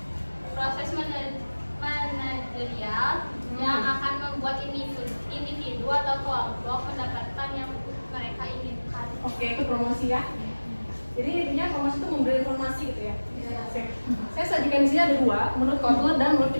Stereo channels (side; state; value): both; inverted; correlation -1.00